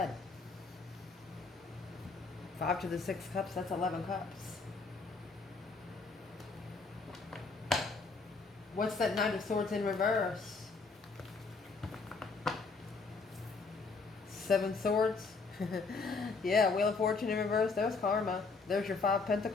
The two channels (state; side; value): quieter; right; 4.2 dB